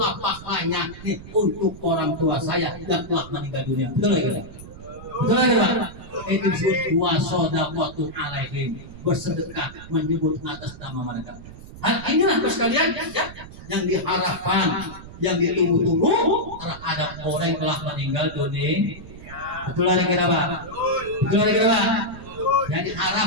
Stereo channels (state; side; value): noise; right; rumble, 15 dB below the sound